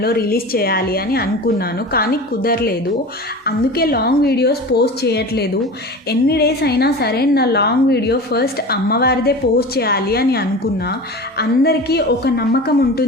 రిలీజ్ చేయాలి అని అనుకున్నాను, కానీ కుదరలేదు. అందుకే లాంగ్ వీడియోస్ పోస్ట్ చేయట్లేదు. ఎన్ని డేస్ అయినా సరే నా లాంగ్ వీడియో ఫస్ట్ అమ్మవారిదే పోస్ట్ చేయాలి అని అనుకున్నా. అందరికీ ఒక నమ్మకం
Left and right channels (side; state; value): both; normal; correlation 0.33